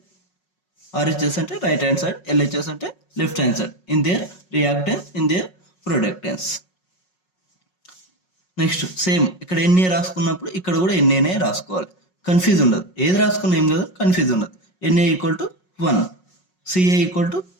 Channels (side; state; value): right; late; 5.4 ms